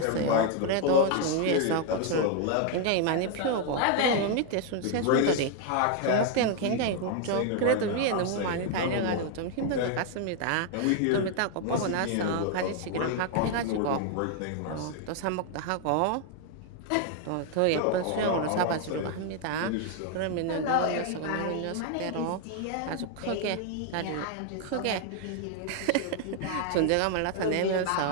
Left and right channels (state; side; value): different; both; correlation 0.00